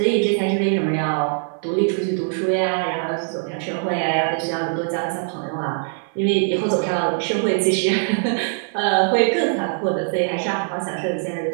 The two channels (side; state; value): left; silent; 62 dB below the other